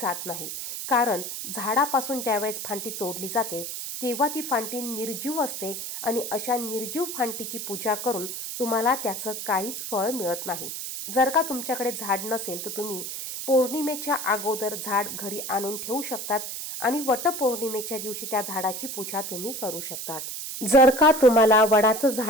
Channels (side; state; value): right; noise; hiss, 6 dB below the sound